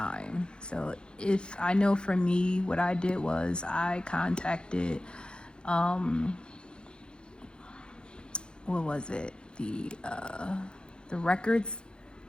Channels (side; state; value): right; late; 0.050 ms